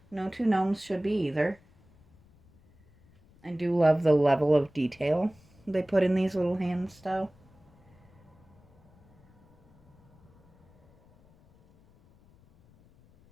two gnomes should be either. I do love the level of detail they put in these little hands, though.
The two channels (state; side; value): noise; left; rumble, 29 dB below the sound